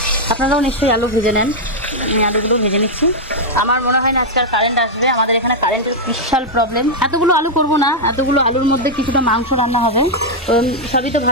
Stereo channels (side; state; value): both; normal; correlation -0.02